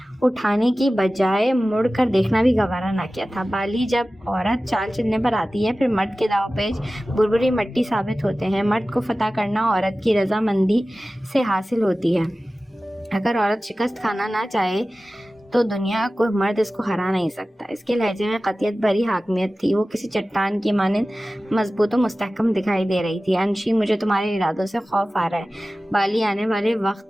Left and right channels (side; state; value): both; normal; correlation 0.96